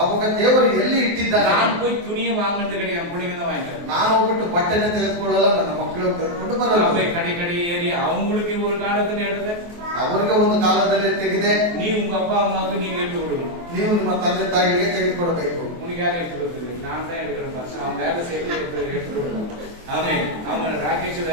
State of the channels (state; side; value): late; left; 23 ms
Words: ದೇವರು ಎಲ್ಲಿ ಇಟ್ಟಿದ್ದಾರೆ? நான் போய் துணியை வாங்குறது கிடையாது, பிள்ளைங்க தான் வாங்கிட்டு. ನಾನು ಹೋಗ್ಬಿಟ್ಟು ಬಟ್ಟೆನ ತೆಗೆದುಕೊಳ್ಳಲ್ಲ, ನನ್ನ ಮಕ್ಕಳು ತೆಗೆದುಕೊಂಡು ಬರಲ್ಲ. கடை ஏறி அவங்களுக்கு ஒரு காலத்துல எடுத்து ಅವರಿಗೆ ಒಂದು ಕಾಲದಲ್ಲಿ ತೆಗೆದೆ. நீ உங்க அப்பா அம்மாவுக்கு நீங்க எடுத்து கொடுக்கணும். ನೀವು ನಿಮ್ಮ ತಂದೆ ತಾಯಿಗೆ ತೆಗೆದುಕೊಡಬೇಕು. உனக்கு யாரும் எடுத்து கொடுக்குது? நான் தான் எடுக்கிறேன் பாஸ். அவன் வேலை செய்து எடுத்து கொடுப்பான். ஆமென். அவன் ராகேஷ்